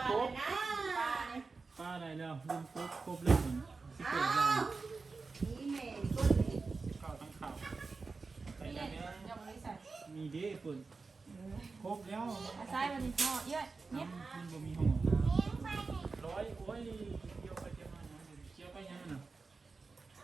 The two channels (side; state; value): left; quieter; 4.2 dB